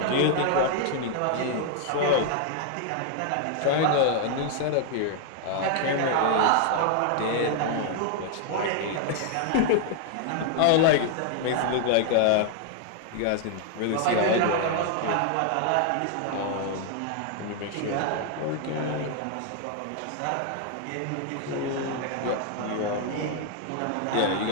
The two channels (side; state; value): both; different; correlation 0.00